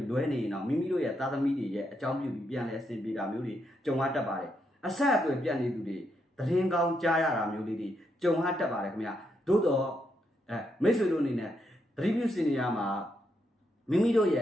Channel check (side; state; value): both; normal; correlation 0.79